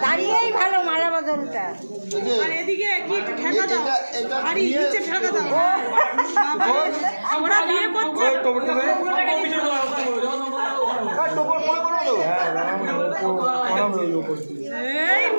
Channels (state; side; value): inverted; both; correlation -1.00